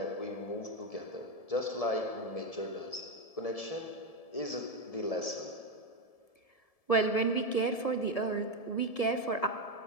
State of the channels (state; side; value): late; right; 1.7 ms